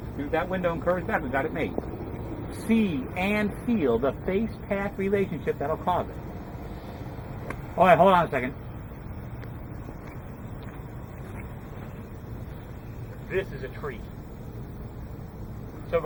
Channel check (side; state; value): both; identical; correlation 1.00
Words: through that window and curves back, we've got it made. See and feel the face-path relationship that'll cause it. All right, hold on a second. This is a tree. So